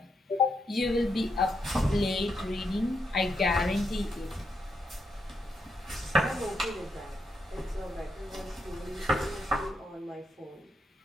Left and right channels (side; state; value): both; normal; correlation 0.81